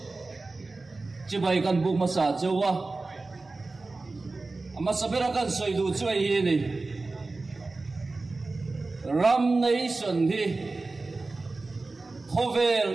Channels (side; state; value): left; quieter; 3.5 dB